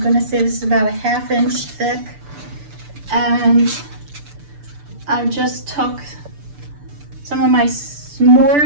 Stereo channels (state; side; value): late; left; 6.8 ms